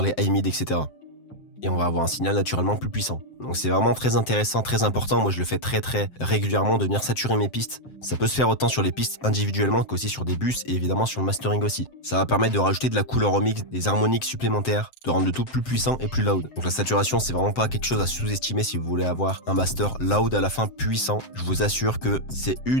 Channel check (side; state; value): right; late; 7.7 ms